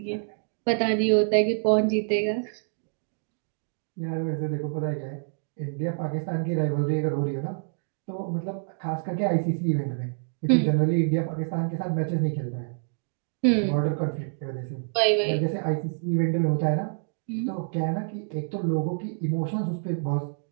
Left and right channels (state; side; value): silent; left; digital silence